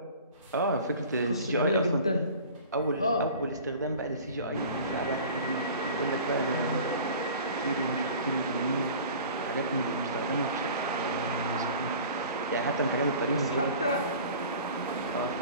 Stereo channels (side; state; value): both; inverted; correlation -0.43